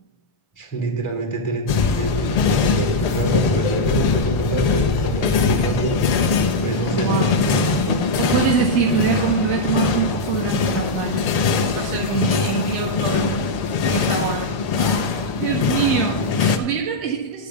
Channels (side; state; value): right; late; 1.8 ms